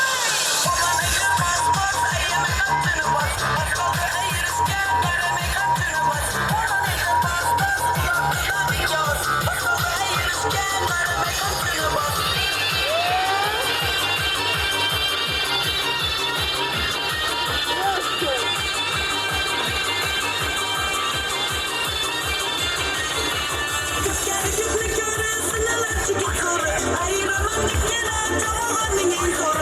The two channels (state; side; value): identical; both; correlation 1.00